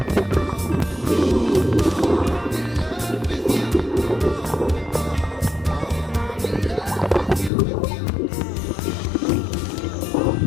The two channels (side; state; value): right; drops out; at 7.5 s